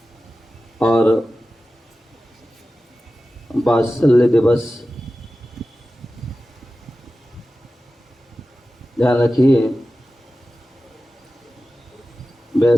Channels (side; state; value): both; normal; correlation 0.94